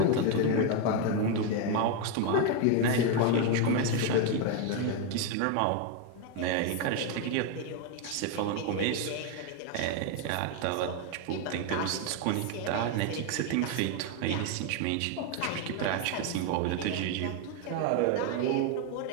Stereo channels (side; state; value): both; different; correlation 0.01